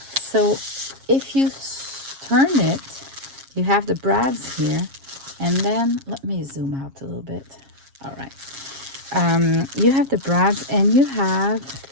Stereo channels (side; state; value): left; late; 7.4 ms